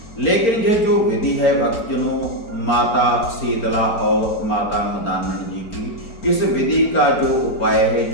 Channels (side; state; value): right; late; 4.4 ms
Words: लेकिन ये जो विधि है भक्तजनों माता शीतला और माता मदानन जी की, इस विधि का जो उपाय है,